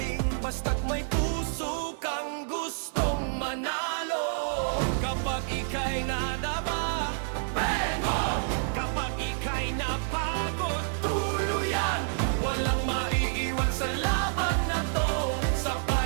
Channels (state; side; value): silent; left; digital silence